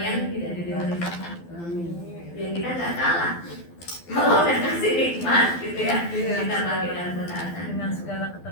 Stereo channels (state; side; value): late; right; 12 ms